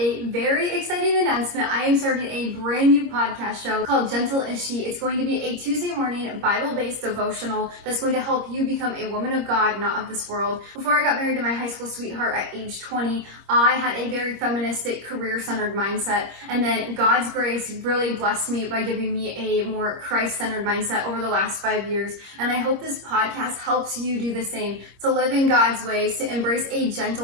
very exciting announcement. I am starting a brand new podcast show called Gentle Is She. It's going to be a Tuesday morning Bible-based devotional that's going to help you become a woman of God, not of this world. Before I got married to my high school sweetheart at age 20, I had a very feministic, career-centered mindset, and then God's grace really blessed me by giving me a more Christ-centered mindset over the last 5 years. And I hope this podcast helps you do the same, to live in God's ways, to embrace a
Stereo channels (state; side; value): late; left; 26 ms